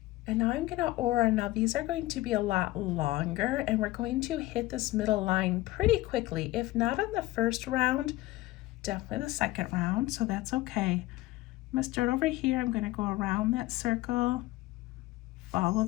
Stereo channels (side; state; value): right; quieter; 18.1 dB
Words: And now I'm gonna aura. Now these are going to be a lot longer, and we're going to hit this middle line pretty quickly. If not on the first round, definitely the second round, so that's okay. I'm gonna start over here. I'm gonna go around that circle, follow